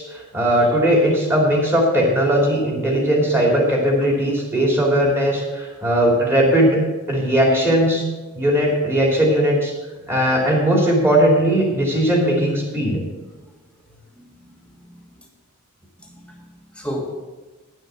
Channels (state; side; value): normal; both; correlation 0.38